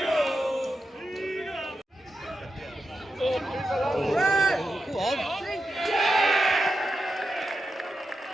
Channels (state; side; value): normal; both; correlation 0.88